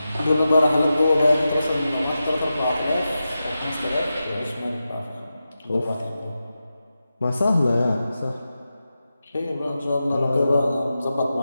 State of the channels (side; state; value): both; inverted; correlation -0.91